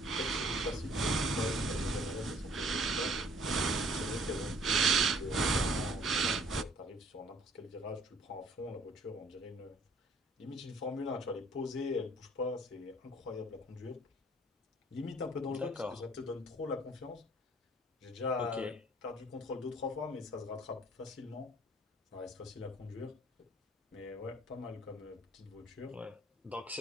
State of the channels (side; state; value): both; normal; correlation 0.57